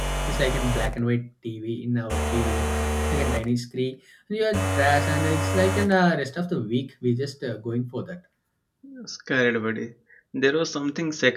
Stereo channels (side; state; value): both; identical; correlation 1.00